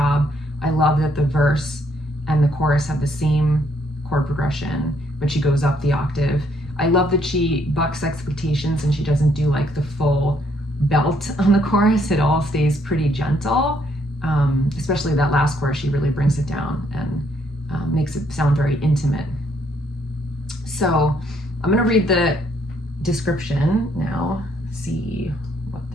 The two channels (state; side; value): normal; both; correlation 0.70